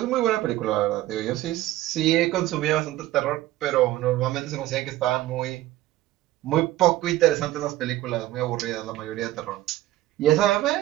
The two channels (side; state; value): left; quieter; 15.4 dB